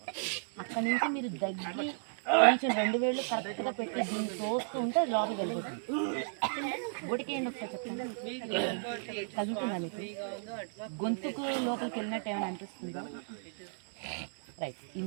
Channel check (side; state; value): left; silent; digital silence